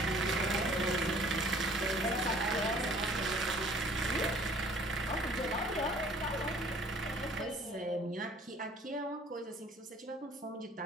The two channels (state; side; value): normal; both; correlation 0.54